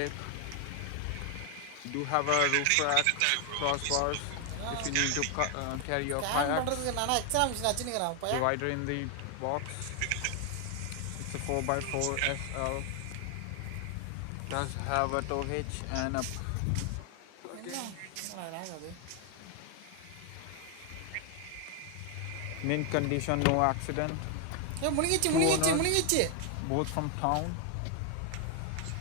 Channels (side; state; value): both; different; correlation 0.00